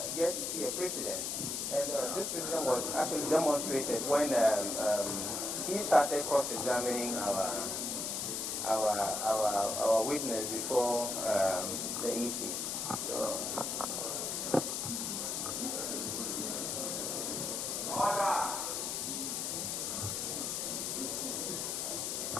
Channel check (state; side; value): noise; left; hiss, 2 dB below the sound